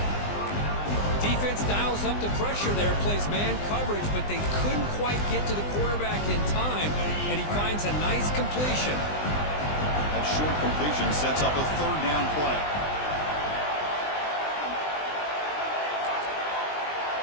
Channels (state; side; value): late; right; 20 ms